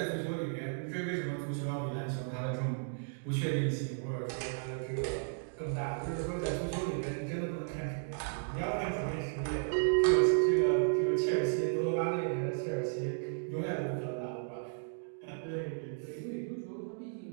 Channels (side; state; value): left; silent; digital silence